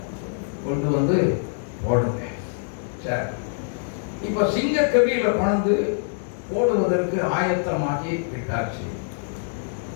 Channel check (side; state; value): right; silent; digital silence